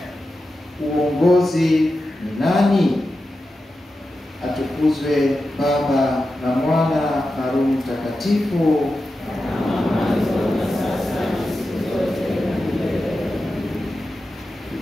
uongozi ni nani? Atukuzwe Baba na Mwana na Roho Mtakatifu.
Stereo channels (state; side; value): normal; both; correlation 0.91